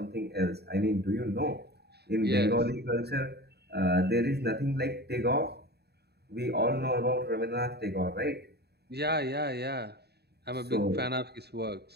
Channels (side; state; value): left; late; 0.48 ms